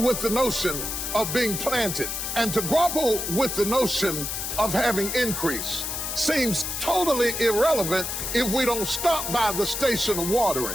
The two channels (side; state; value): left; noise; hiss, 3 dB below the sound